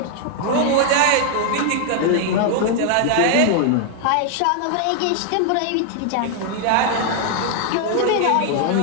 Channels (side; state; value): both; different; correlation 0.00